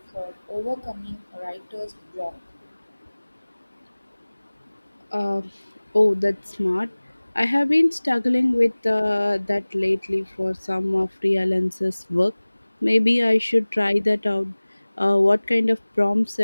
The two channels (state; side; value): inverted; both; correlation -1.00